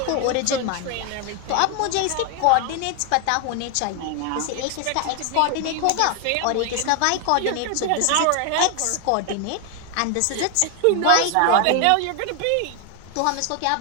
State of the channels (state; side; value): different; both; correlation 0.01